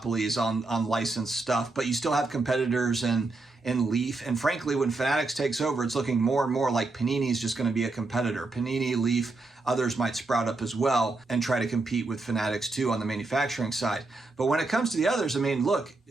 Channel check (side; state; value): left; quieter; 3.3 dB